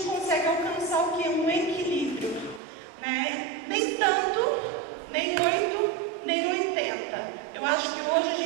consegue alcançar o que? Um equilíbrio, né? Nem tanto, nem 8, nem 80. Eu acho que hoje a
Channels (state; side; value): drops out; left; at 2.6 s